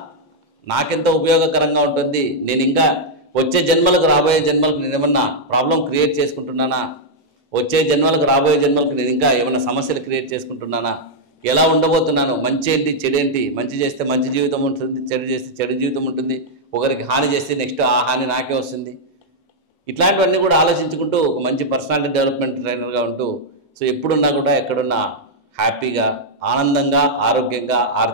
నాకెంత ఉపయోగకరంగా ఉంటుంది, నేను ఇంకా వచ్చే జన్మలకు రాబోయే జన్మలకు నేను ఏమన్నా ప్రాబ్లం క్రియేట్ చేసుకుంటున్నానా, వచ్చే జన్మలకు రాబోయే జన్మలకు నేను ఇంకా ఏమైనా సమస్యలు క్రియేట్ చేసుకుంటున్నానా, ఎలా ఉండబోతున్నాను, మంచి ఏంటి చెడేంటి, మంచి చేస్తే మంచి జీవితం ఉంటుంది, చెడు చేస్తే చెడు జీవితం ఉంటుంది, ఒకరికి హాని చేస్తే నెక్స్ట్ ఆ హాని నాకే వస్తుంది. ఇట్లాంటివన్నీ కూడా ఆలోచించుకుంటూ ఒక మంచి పర్సనాలిటీ డెవలప్మెంట్ ట్రైనర్గా ఉంటూ సో ఎప్పుడున్నా కూడా ఎక్కడున్నా హ్యాపీగా, ఆనందంగా, ఆరోగ్యంగా,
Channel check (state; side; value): normal; both; correlation -0.04